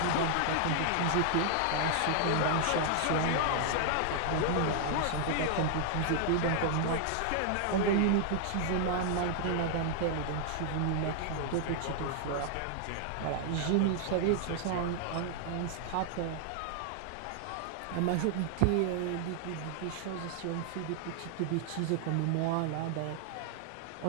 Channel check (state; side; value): different; both; correlation 0.00